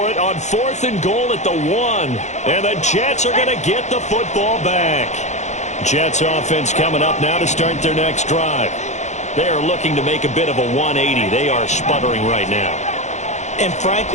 it on 4th and goal at the 1. And the Jets are going to get the football back. Jets offense coming up now to start their next drive. They are looking to make a bit of a 180. They are sputtering right now. And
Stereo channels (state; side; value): late; right; 0.34 ms